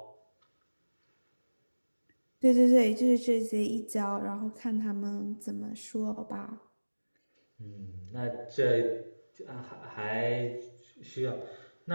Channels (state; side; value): inverted; both; correlation -1.00